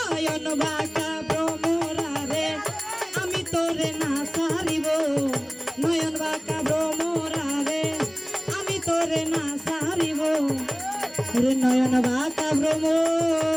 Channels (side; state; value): both; identical; correlation 1.00